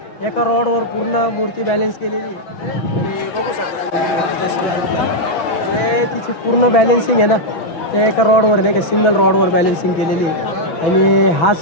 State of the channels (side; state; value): right; late; 6.1 ms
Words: एका रॉडवर पूर्ण मूर्ती बॅलेन्स केलेली. बघू शकता जे तिची पूर्ण बॅलेन्सिंग आहे ना ते एका रॉडवर नाही का, सिंगल रॉडवर बॅलेन्सिंग केलेली आहे. आणि